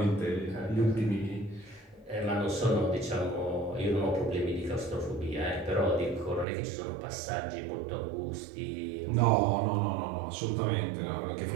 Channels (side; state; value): left; drops out; at 6.5 s